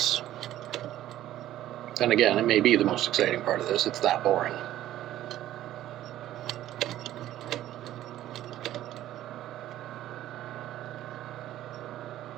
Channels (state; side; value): quieter; left; 13.3 dB